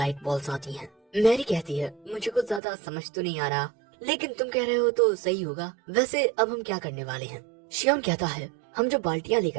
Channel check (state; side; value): drops out; left; at 2.6 s